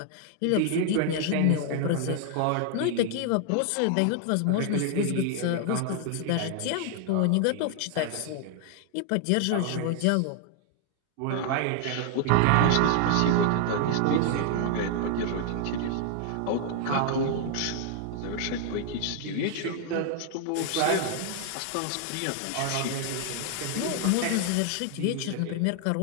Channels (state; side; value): different; both; correlation 0.00